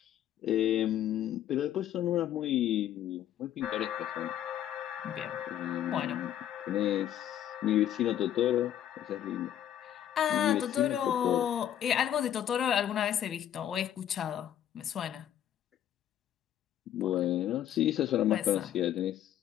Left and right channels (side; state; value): right; quieter; 11.0 dB